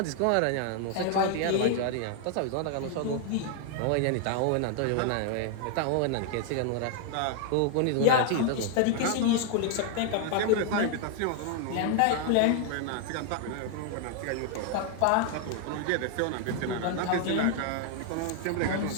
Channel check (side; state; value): both; different; correlation 0.00